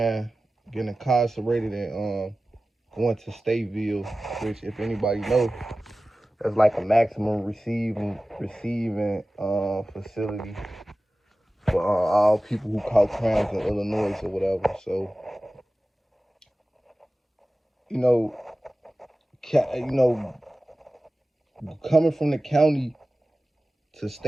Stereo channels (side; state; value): both; normal; correlation 0.96